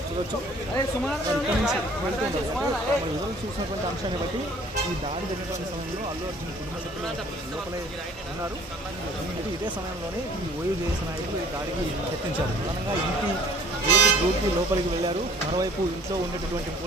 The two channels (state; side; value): normal; both; correlation 0.53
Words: చూడవచ్చు. రిజల్ట్స్ చూసినటువంటి అంశాన్ని బట్టి ఈ దాడి జరిగినటువంటి సమయంలో అల్లు అర్జున్ కుటుంబ సభ్యులు లోపలే ఉన్నారు. ఇదే సమయంలోనే ఈ ఓయో చేసే నాయకులు ఈ దాడికి యత్నించారు. ప్రధానంగా ఇంటి గ్రూప్కి లోపలికి వెళ్ళారు. మరోవైపు ఇంట్లో ఉండేటటువంటి